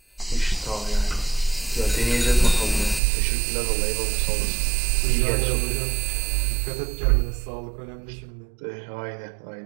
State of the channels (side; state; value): left; drops out; at 3.0 s